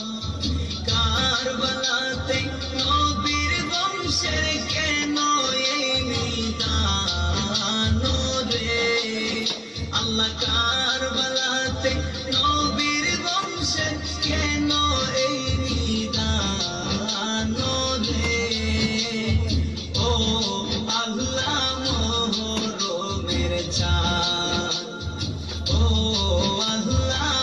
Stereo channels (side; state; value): both; identical; correlation 1.00